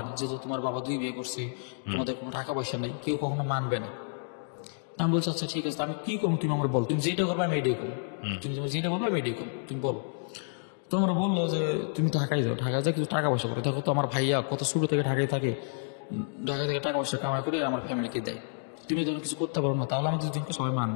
না, যেহেতু তোমার বাবা 2 বিয়ে করছে, তোমাদের কোনো টাকা পয়সা নেই, কেউ কখনো মানবে না। আমি বলছি আচ্ছা ঠিক আছে, আমি কি করবো তুমি আমার বল, তুমি যেটা করবে আমি এটাই করবো, তুমি যেটা বলবে আমি এটাই করবো, তুমি বলো। তোমরা বললো যে তুমি ঢাকায় যাও, ঢাকায় যাও কিছু টাকা পয়সা করো, দেখো তো আমার ভাইয়া কত ছোট থেকে ঢাকায় থাকে, ঢাকা থেকে টাকা পয়সা কামাই করে আমার ফ্যামিলিকে দেয়, তুমি যখন কিছু করতে পারো না তাহলে আমাদের দুজনকে সবাই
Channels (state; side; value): silent; right; digital silence